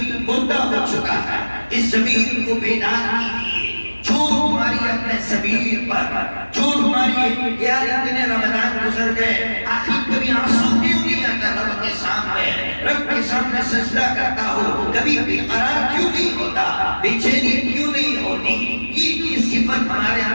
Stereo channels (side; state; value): both; inverted; correlation -1.00